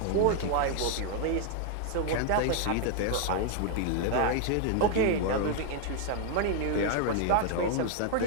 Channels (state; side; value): different; both; correlation 0.00